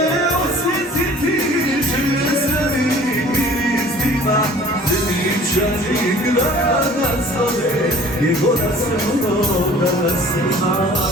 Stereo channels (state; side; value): normal; both; correlation 0.49